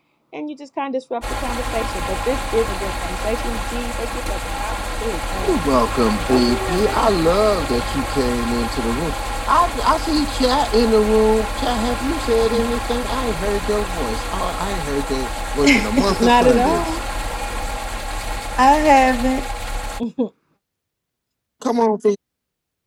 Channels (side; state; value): both; identical; correlation 1.00